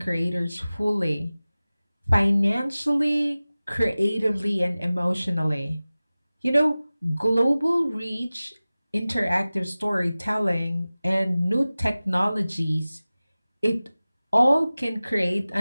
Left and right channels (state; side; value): inverted; both; correlation -0.97